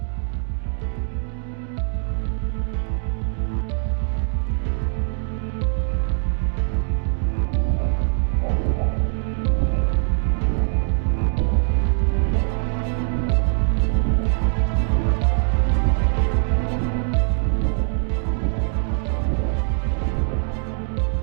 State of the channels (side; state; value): left; silent; 58 dB below the other